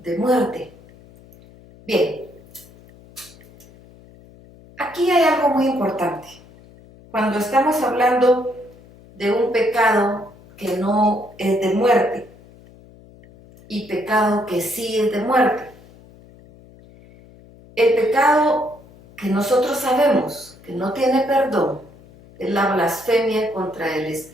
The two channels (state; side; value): noise; left; hum, 24 dB below the sound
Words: muerte. Bien, aquí hay algo muy importante. Cuando estamos hablando de un pecado que no es de muerte y pecado que sí es de muerte, el pecado que nosotros sabemos que no tiene perdón es la blasfemia contra el